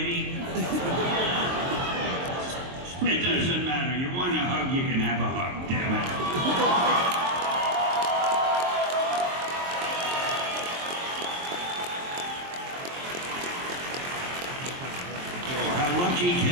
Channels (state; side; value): late; left; 23 ms